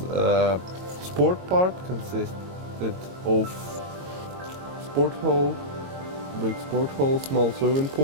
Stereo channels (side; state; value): left; late; 22 ms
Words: sport part consisted of sport hall, big sport hall, small swimming